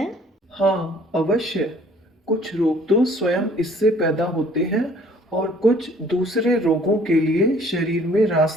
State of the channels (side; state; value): both; normal; correlation 0.57